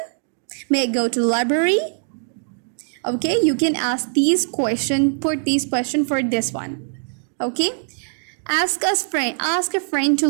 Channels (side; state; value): left; silent; digital silence